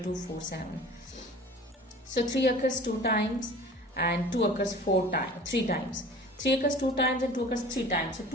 2 4 7. So 3 occurs 2 times and 2 occurs 3 times. 3 occurs 2 times and 2 occurs 3 times. So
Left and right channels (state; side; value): normal; both; correlation 0.43